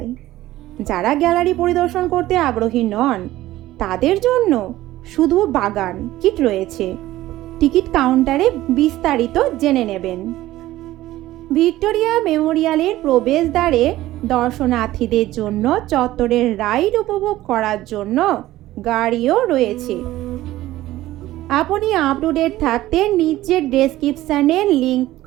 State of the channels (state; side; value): quieter; left; 15.7 dB